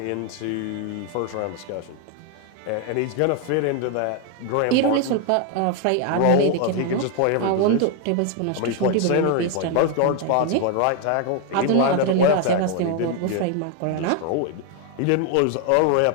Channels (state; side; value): different; both; correlation 0.01